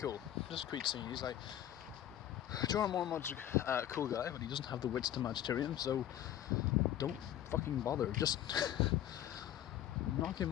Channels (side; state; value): right; quieter; 11.7 dB